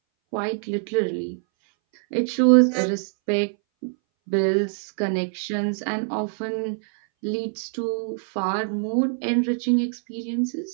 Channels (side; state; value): left; silent; 60 dB below the other